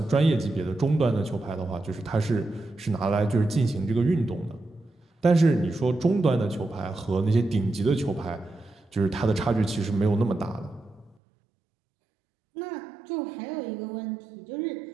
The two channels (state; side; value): drops out; left; at 11.2 s